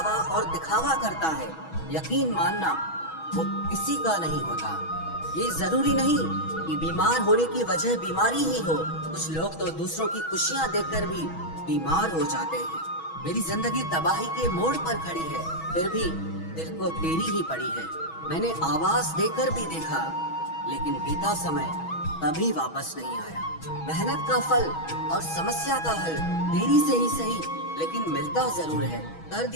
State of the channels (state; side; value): late; right; 6.2 ms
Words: और दिखावा करता है यकीन मानना वो किसी का नहीं होता। ये जरूरी नहीं कि बीमार होने की वजह बीमारी ही हो। कुछ लोग तो दूसरों की खुशियां देखकर भी बीमार हो जाते हैं। मेरी जिंदगी तबाही के मोड़ पर खड़ी है फिर भी दिल को तेरी ही पड़ी है। मैंने आवाज देकर भी देखा लेकिन बीता समय कभी वापस नहीं आया। मेहनत का फल और समस्या का हल देरी से ही सही लेकिन मिलता जरूर है। कर